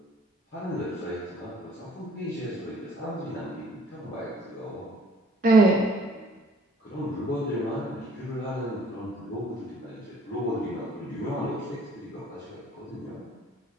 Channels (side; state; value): both; normal; correlation 0.57